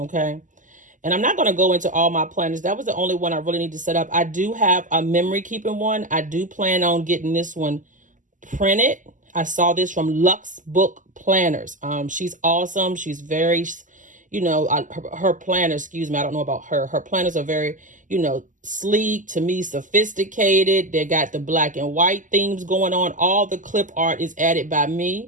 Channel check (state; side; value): late; left; 0.37 ms